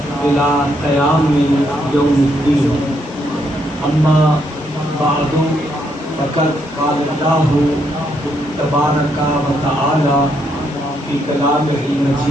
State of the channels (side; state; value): both; normal; correlation 0.75